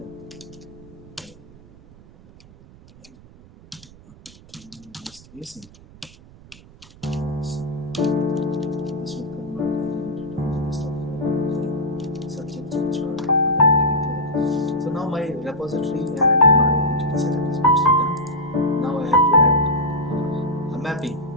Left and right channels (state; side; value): noise; right; rumble, 22 dB below the sound